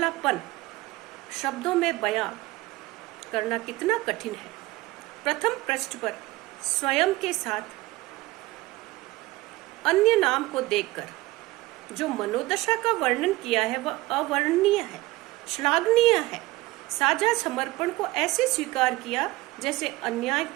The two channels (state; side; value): quieter; left; 19.2 dB